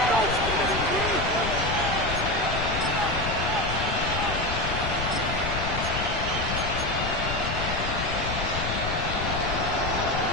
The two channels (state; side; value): noise; left; rumble, 4 dB below the sound